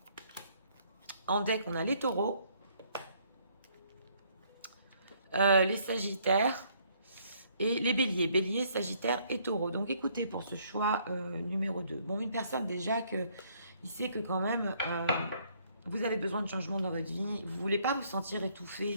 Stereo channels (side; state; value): both; inverted; correlation -0.66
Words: En deck, on a les taureaux, les sagittaires et les béliers. Béliers, sagittaires et taureaux. Donc écoutez pour ce choix numéro 2. Bon, une personne déjà il sait que quand même vous avez besoin de changement dans votre vie. Vous ne voulez pas vous sentir étouffé